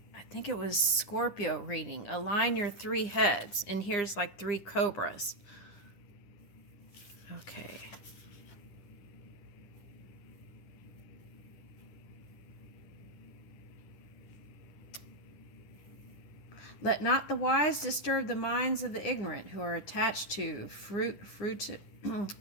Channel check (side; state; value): right; late; 9.9 ms